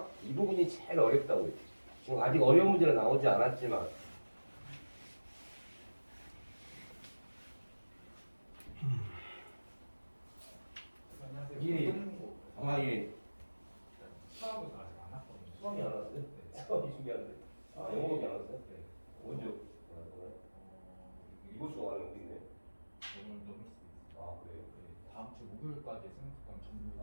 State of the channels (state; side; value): inverted; both; correlation -1.00